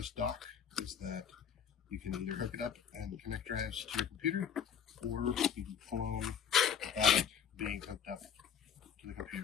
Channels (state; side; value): quieter; right; 8.2 dB